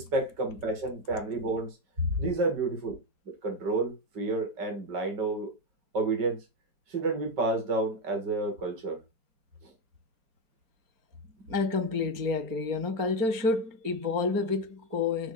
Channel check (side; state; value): left; late; 4.4 ms